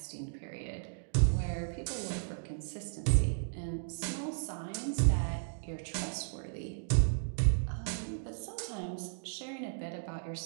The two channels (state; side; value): silent; left; digital silence